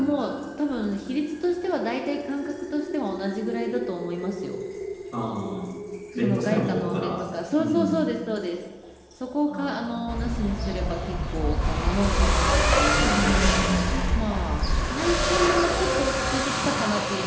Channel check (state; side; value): identical; both; correlation 1.00